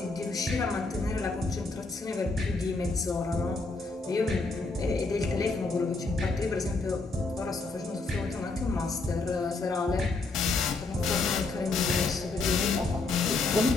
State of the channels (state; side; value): quieter; right; 3.7 dB